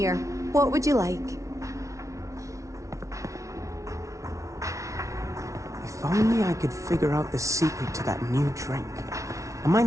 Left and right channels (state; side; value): late; left; 0.15 ms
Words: What would you like? If only I could figure out the secret to that new drink. I might